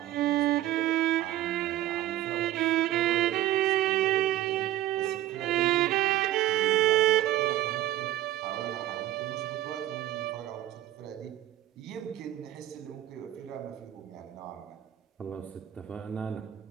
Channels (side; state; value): left; quieter; 13.6 dB